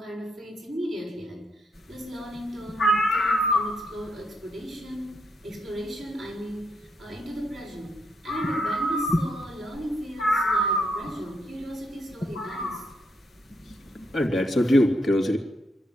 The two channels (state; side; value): normal; both; correlation 0.77